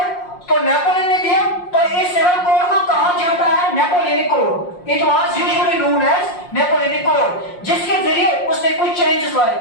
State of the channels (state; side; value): late; right; 5.6 ms